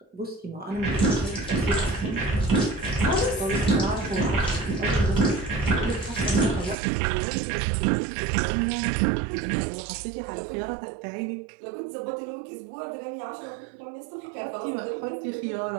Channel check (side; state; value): left; drops out; at 6.8 s